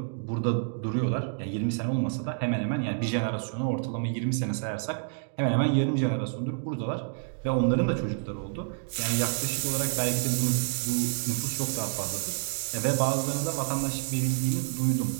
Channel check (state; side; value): silent; left; digital silence